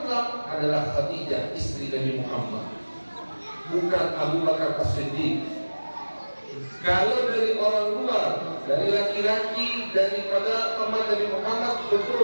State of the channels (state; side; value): inverted; both; correlation -1.00